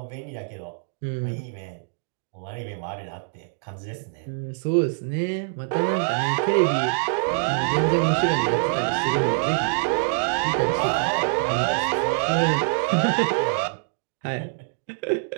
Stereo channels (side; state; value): left; silent; digital silence